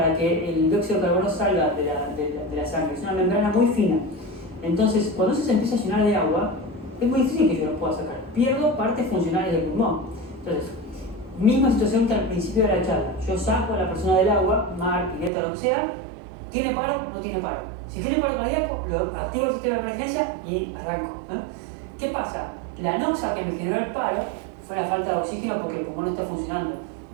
que el dióxido de carbono salga de la sangre. Es una membrana muy fina. Entonces, cuando eso se empieza a llenar de agua, es muy difícil que yo lo pueda sacar. Pierdo partes funcionales del pulmón. Entonces, misma situación que al principio de la charla. Yo saco a la persona del agua, mar, pileta, lo que sea. ¿Tiene paro? No tiene paro. Si tiene paro cardíaco, lo activo el sistema de emergencia y arranco. ¿Qué pasa? La anoxa que me generó el paro fue la falta de oxígeno porque el pulmón no está funcionando.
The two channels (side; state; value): left; drops out; at 15.3 s